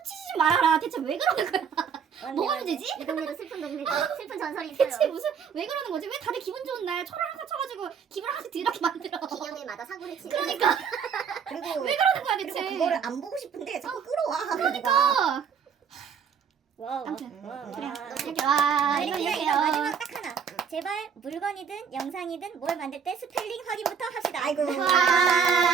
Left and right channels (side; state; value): left; quieter; 6.9 dB